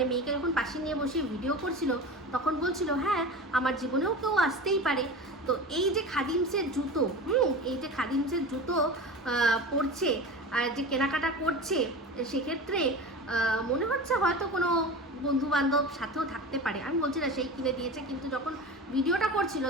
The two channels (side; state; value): both; normal; correlation 0.32